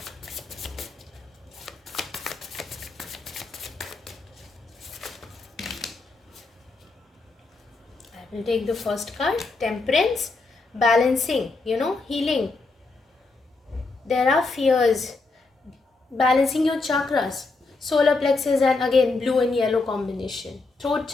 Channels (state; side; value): quieter; right; 3.7 dB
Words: We'll take the first card, Temperance, balancing, healing. There are fears, balancing your chakras, solar plexus, and again blue and yellow combination, throat